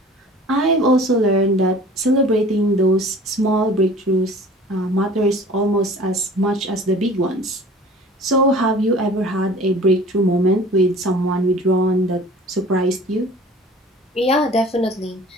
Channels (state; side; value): normal; both; correlation 0.45